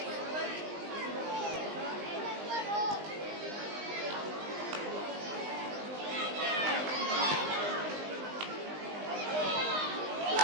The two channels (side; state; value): left; late; 19 ms